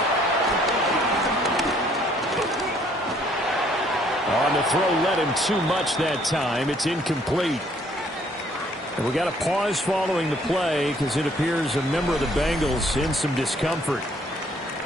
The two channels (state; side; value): normal; both; correlation 0.63